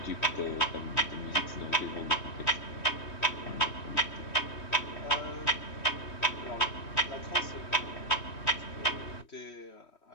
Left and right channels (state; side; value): late; right; 3.1 ms